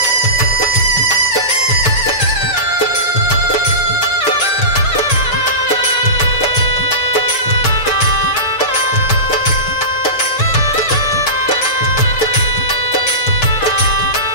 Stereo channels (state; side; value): late; right; 6.7 ms